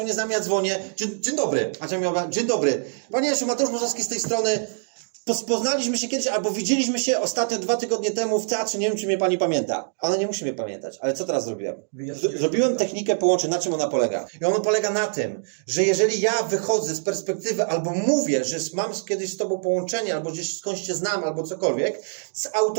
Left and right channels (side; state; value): left; silent; digital silence